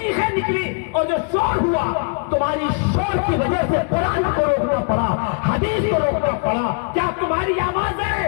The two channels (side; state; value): right; quieter; 38.1 dB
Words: निकली और जो शोर हुआ, तुम्हारी शोर की वजह से कुरान को रोकना पड़ा, हदीस को रोकना पड़ा। क्या तुम्हारी आवाजें